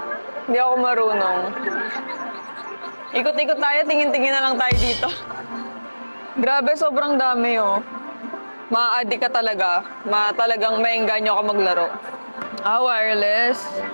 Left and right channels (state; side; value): inverted; both; correlation -1.00